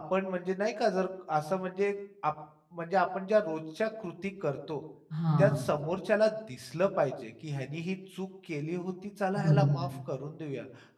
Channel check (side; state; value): both; identical; correlation 1.00